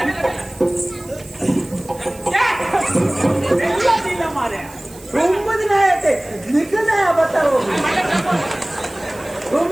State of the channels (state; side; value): noise; right; hiss, 21 dB below the sound